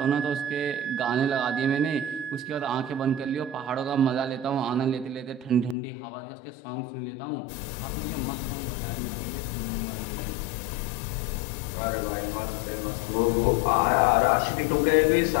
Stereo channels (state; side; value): drops out; right; at 5.8 s